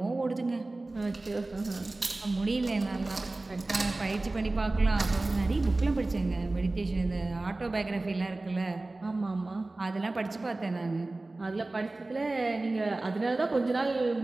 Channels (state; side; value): quieter; left; 3.0 dB